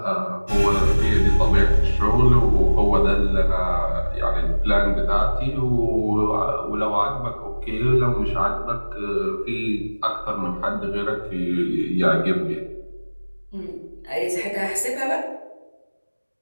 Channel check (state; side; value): inverted; both; correlation -1.00